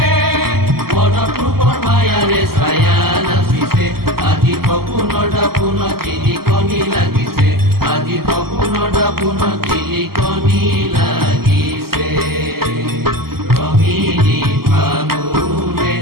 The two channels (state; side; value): late; left; 0.94 ms